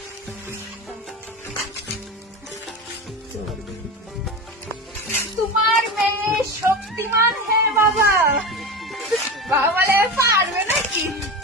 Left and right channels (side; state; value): both; normal; correlation 0.25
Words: তোমার মেয়ে শক্তিমান। হ্যাঁ বাবা, বাবা বলে পারবে নাকি?